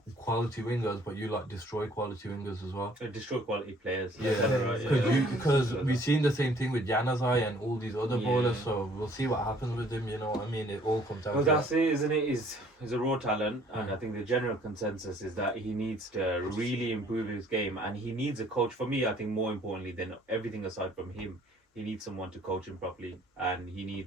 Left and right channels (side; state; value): both; normal; correlation 0.59